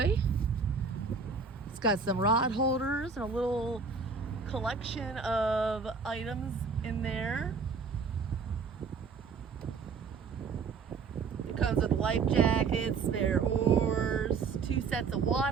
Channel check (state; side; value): quieter; left; 5.1 dB